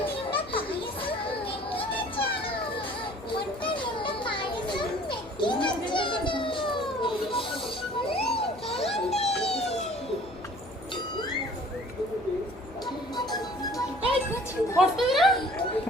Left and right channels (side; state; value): left; noise; hum, 19 dB below the sound